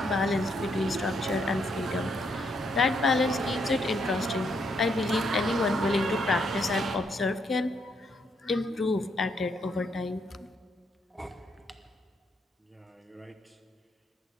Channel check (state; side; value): normal; both; correlation 0.75